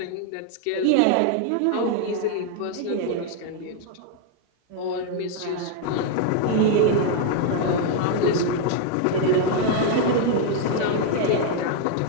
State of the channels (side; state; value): both; different; correlation 0.00